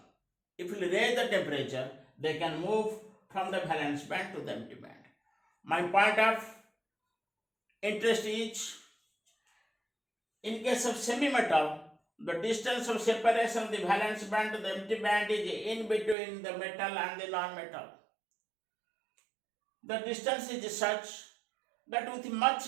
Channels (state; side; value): drops out; left; at 16.2 s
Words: if we raise the temperature, they can move from the valence band to the empty band. My point of interest is, in case of semi-metal, the distance of separation of the valence band to the empty band is in between the metal and the non-metal. The distance is such that with